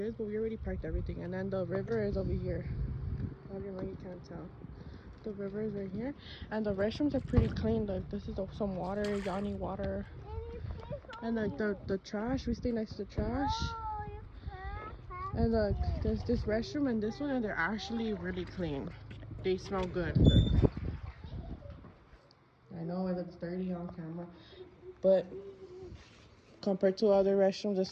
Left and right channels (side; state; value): both; identical; correlation 1.00